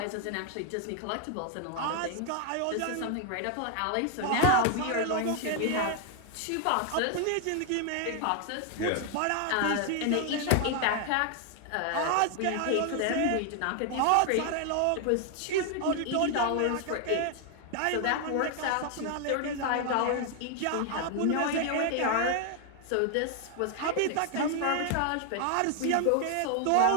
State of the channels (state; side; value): different; both; correlation 0.00